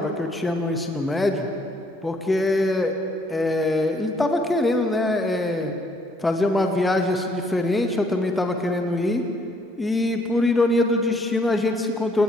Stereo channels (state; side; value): normal; both; correlation 0.66